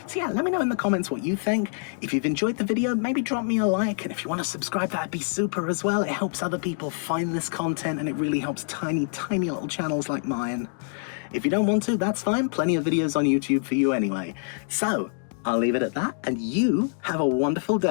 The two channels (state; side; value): silent; right; 61 dB below the other